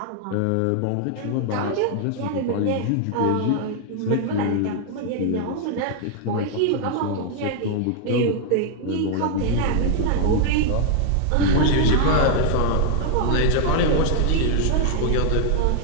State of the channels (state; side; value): different; both; correlation 0.00